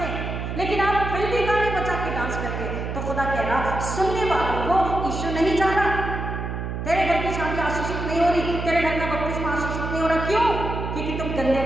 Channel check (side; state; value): right; noise; hum, 4 dB below the sound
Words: हैं, लेकिन आप फिल्मी गाने बजा के डांस करके, तो खुदा कह रहा सुनने वालों को यीशु नहीं चाह रहा। तेरे घर की शादी आशीषित नहीं हो रही, तेरे घर का बपतिस्मा आशीषित नहीं हो रहा। क्यों? क्योंकि तुम गंदे